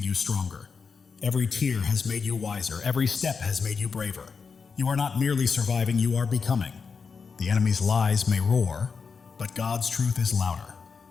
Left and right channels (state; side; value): quieter; right; 5.4 dB